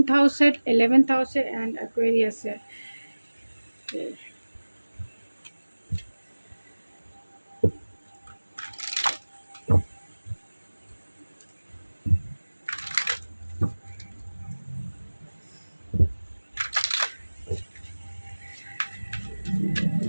हाउस है, 11th हाउस है एंड एक्वेरियस है।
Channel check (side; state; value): both; inverted; correlation -1.00